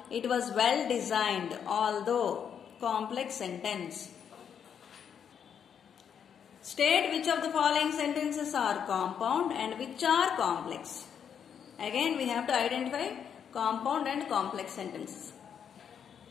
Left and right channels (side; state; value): right; quieter; 7.9 dB